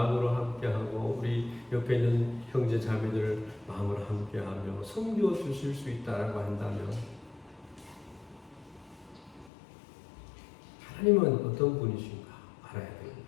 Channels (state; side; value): drops out; right; at 9.5 s